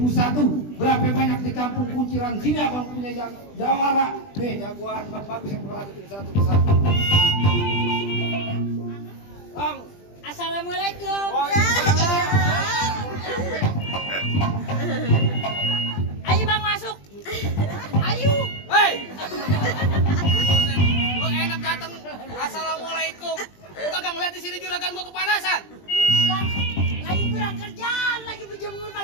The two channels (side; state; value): right; late; 20 ms